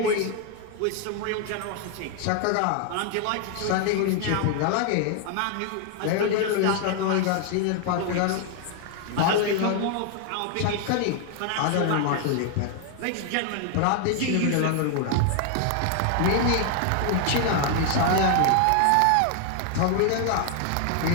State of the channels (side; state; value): both; different; correlation 0.00